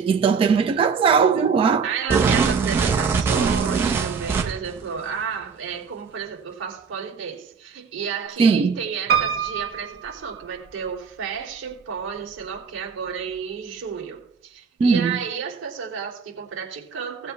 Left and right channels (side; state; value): left; quieter; 5.7 dB